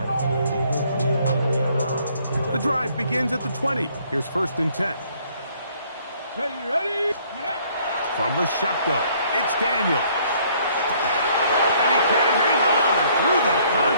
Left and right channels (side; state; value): both; inverted; correlation -0.62